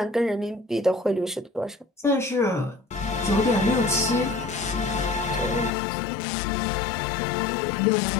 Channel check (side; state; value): right; drops out; at 5.7 s